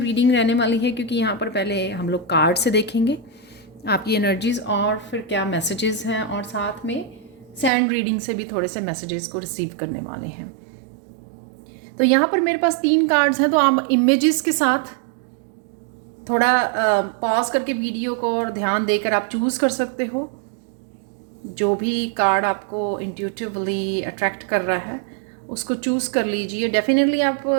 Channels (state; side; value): drops out; left; at 7.7 s